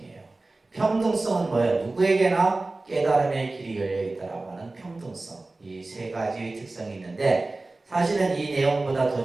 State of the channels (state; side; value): quieter; left; 3.1 dB